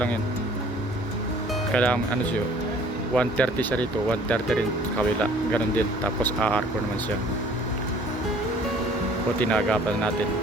yun. Kailangan ano siya, 130 siya rito, 130 rin sa kabila, ganun din. Tapos aarko naman siya. O tinagapan natin,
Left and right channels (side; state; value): both; normal; correlation 0.54